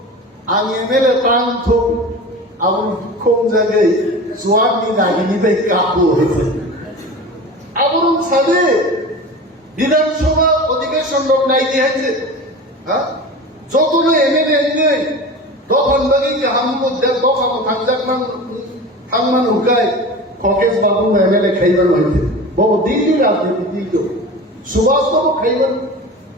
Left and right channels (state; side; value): normal; both; correlation 0.33